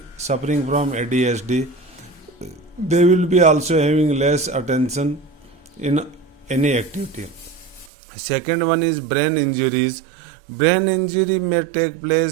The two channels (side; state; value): left; drops out; at 7.9 s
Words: suffering from ADHD. They will be also having less attention in any activity. Second one is brain injuries. Brain injury may take